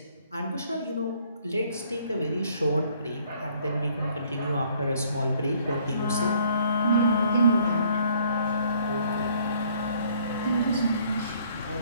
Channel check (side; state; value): both; inverted; correlation -0.62